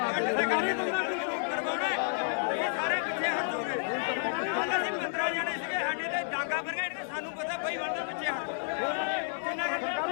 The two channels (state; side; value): silent; right; digital silence